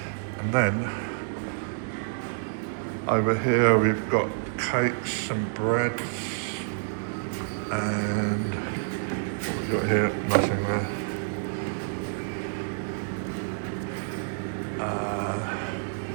And then over here we've got cakes and breads, and what we've got here, nothing there.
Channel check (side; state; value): left; silent; digital silence